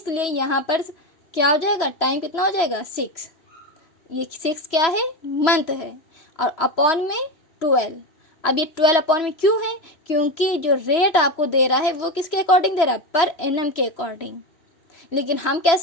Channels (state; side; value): late; right; 3.1 ms